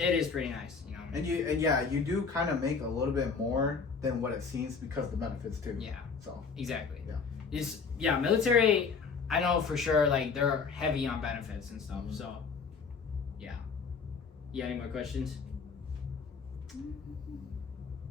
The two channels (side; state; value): right; quieter; 5.3 dB